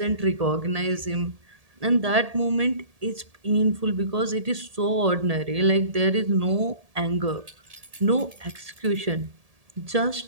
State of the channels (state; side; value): late; left; 1.8 ms